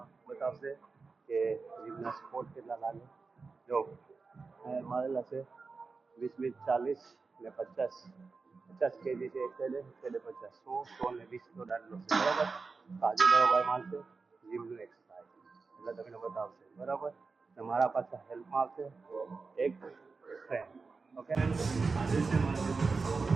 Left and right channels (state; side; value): quieter; left; 4.4 dB